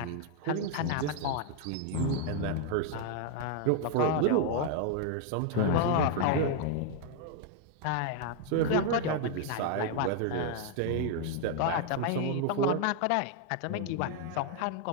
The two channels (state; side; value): different; both; correlation 0.00